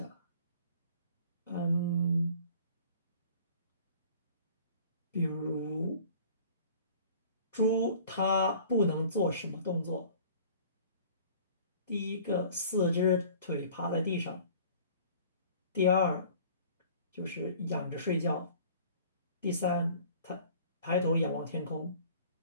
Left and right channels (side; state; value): both; inverted; correlation -0.49